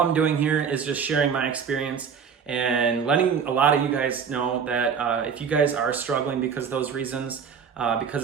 doing here is just sharing my experience and letting a lot of you guys know that if you guys are struggling because of those reasons,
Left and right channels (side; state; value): left; quieter; 6.7 dB